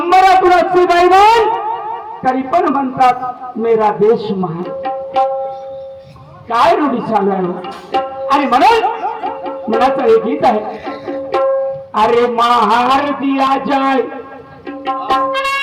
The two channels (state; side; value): identical; both; correlation 1.00